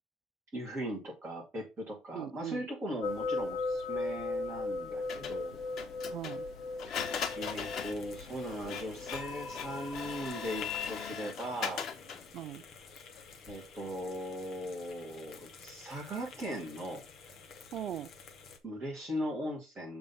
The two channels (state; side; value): normal; both; correlation 0.66